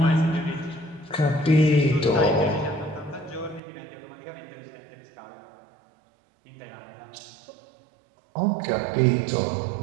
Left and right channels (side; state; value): left; drops out; at 3.6 s